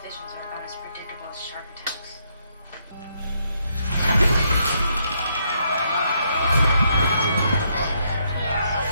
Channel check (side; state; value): both; inverted; correlation -0.75